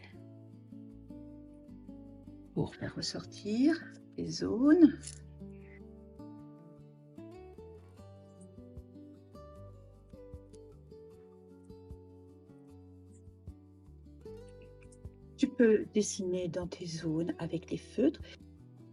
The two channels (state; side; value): identical; both; correlation 1.00